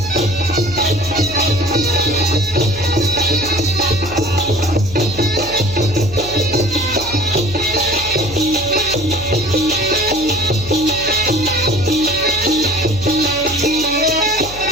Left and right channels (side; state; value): left; noise; hum, 14 dB below the sound